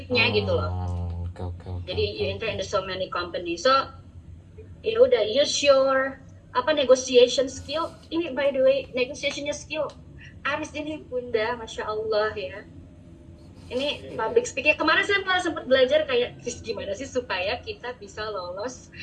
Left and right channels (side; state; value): both; identical; correlation 1.00